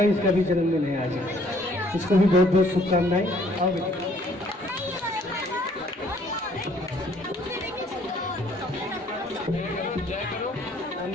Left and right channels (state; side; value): normal; both; correlation 0.61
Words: इसका भी जन्मदिन है आज। इसको भी बहुत बहुत शुभकामनाएं। आओ बेटा। जय करो,